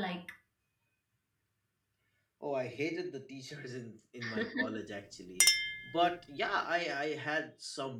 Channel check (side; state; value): both; identical; correlation 1.00